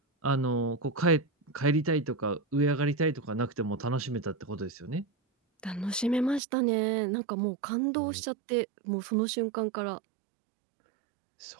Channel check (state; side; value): drops out; left; at 6.4 s